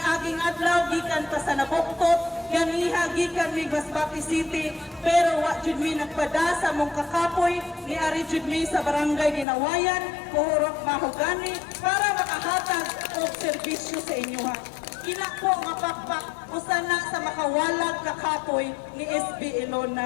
adlaw gikan pa sa Nabuktot, ganiha gikan mi Masbate City, pero wa jud mi nagpada sa mong kakapoy, ni ari jud mi sa barangay Ginawayan, Puhurok Mahogani, para makahatag og serbisyo sa inyo. Ina po nga pakpak usana sa makawalag kakapoy ni SB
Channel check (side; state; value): right; drops out; at 9.5 s